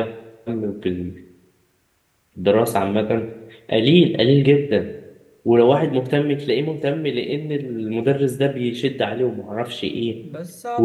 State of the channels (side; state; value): both; identical; correlation 1.00